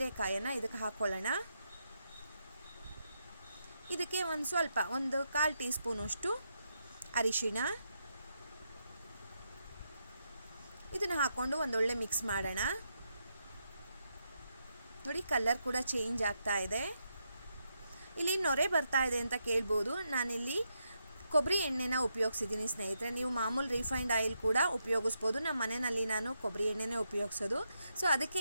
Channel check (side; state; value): both; inverted; correlation -0.82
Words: ಇದಕ್ಕೆ ಹಾಕ್ಕೊಳ್ಳೋಣ. ಇದಕ್ಕೆ ಒಂದು 1/4 ಟೀ ಸ್ಪೂನಷ್ಟು ಅರಿಶಿಣ, ಇದನ್ನು ಹಾಕ್ಕೊಂಡು ಒಂದೊಳ್ಳೆ ಮಿಕ್ಸ್ ಮಾಡೋಣ. ನೋಡಿ ಕಲರ್ ಕೂಡ ಚೇಂಜ್ ಆಗ್ತಾ ಇದೆ. ಇಲ್ಲಿ ನೊರೆ ಬರ್ತಾ ಇದೆ ಅಂತ ಕೇಳ್ಬೋದು. ನಾನಿಲ್ಲಿ ಕೊಬ್ಬರಿ ಎಣ್ಣೆನ ಉಪಯೋಗಿಸಿದ್ದೀನಿ ಸ್ನೇಹಿತರೆ. ನೀವು ಮಾಮೂಲು ರಿಫೈನ್ಡ್ ಆಯಿಲ್ ಕೂಡ ಉಪಯೋಗಿಸ್ಬೋದು. ನಮ್ಮ ಮನೆಯಲ್ಲಿ ನಾನು ಕೊಬ್ಬರಿ ಎಣ್ಣೆನೇ ಉಪಯೋಗಿಸೋದು. ಸೊ ಅದಕ್ಕೆ